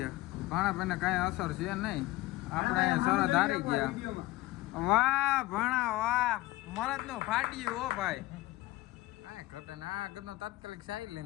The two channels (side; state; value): right; quieter; 18.7 dB